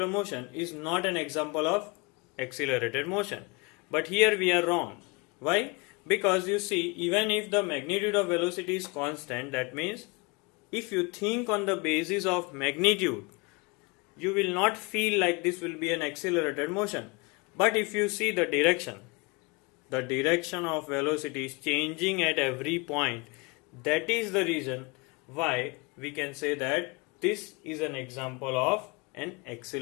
motion is not an example of accelerated motion. But here we are wrong. Why? Because you see, even if the magnitude of velocity is constant, that means if you think on the basis of magnitude, you will not feel like this will be an accelerated motion. But if you see the direction of velocity is changing at every point. That is the reason why we can say that this is an example of an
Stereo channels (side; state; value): right; quieter; 27.7 dB